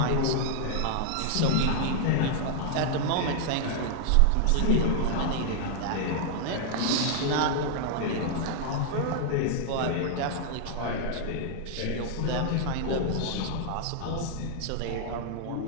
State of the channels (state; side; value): different; both; correlation 0.00